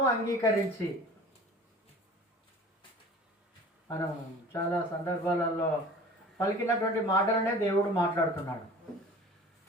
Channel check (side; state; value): both; normal; correlation 0.43